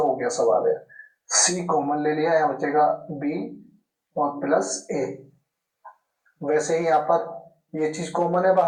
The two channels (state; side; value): identical; both; correlation 1.00